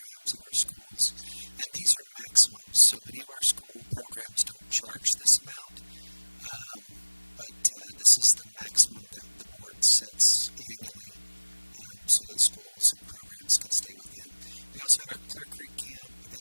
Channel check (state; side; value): inverted; both; correlation -1.00